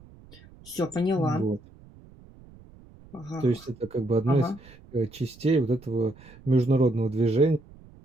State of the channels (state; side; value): noise; right; rumble, 23 dB below the sound